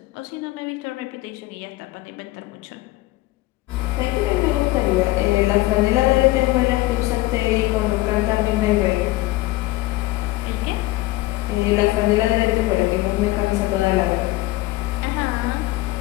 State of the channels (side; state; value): right; quieter; 18.5 dB